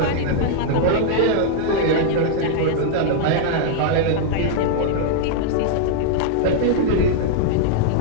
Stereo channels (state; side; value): different; both; correlation -0.01